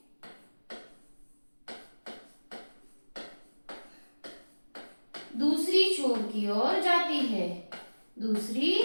दूसरी छोर की ओर जाती है, दूसरी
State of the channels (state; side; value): inverted; both; correlation -1.00